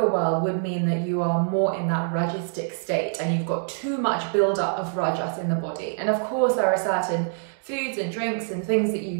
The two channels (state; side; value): silent; left; digital silence